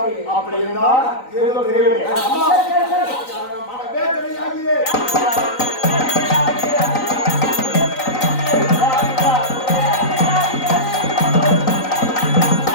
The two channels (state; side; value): late; right; 3.9 ms